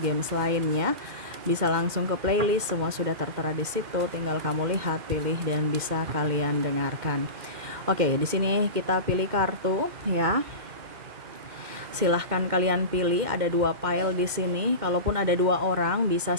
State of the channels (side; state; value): left; late; 2.1 ms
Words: lainnya, bisa langsung ke playlist, semua sudah tertera di situ. Tinggal kamu lihat, pilih, dan bisa kalian dengarkan. Oke, di sini kita pilih kartu ya. Silahkan kalian pilih, ada 2 pile di sini. Kalaupun ada 2 orang,